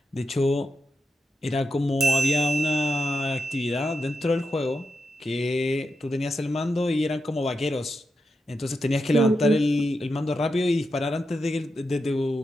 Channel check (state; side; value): normal; both; correlation 0.87